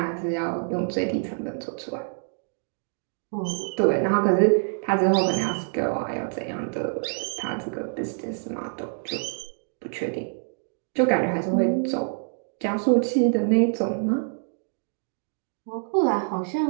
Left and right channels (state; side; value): silent; left; digital silence